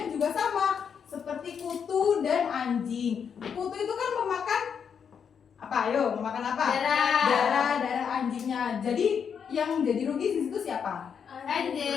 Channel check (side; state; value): right; quieter; 7.1 dB